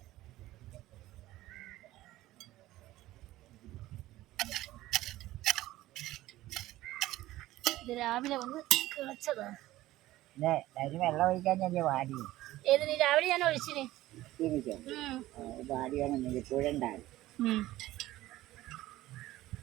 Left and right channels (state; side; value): quieter; left; 16.1 dB